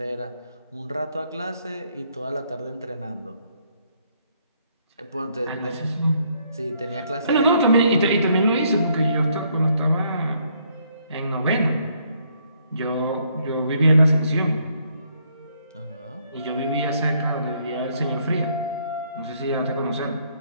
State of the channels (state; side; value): inverted; both; correlation -0.70